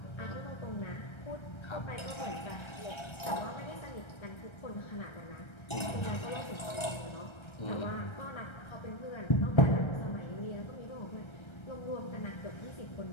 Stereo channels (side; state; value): right; late; 1.3 ms